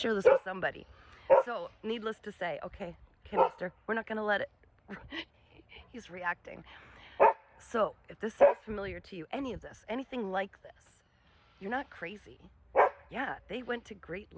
this with somebody. So, needless to say, okay, mister, we're not going to let it. He's reacting. So, if this sounds familiar to you, any of this, anything like this, you're not crazy. Yeah, they went to great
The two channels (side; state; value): both; identical; correlation 1.00